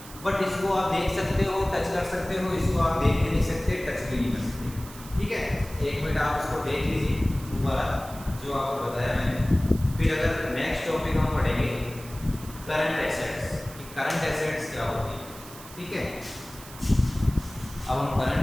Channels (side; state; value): right; noise; hiss, 17 dB below the sound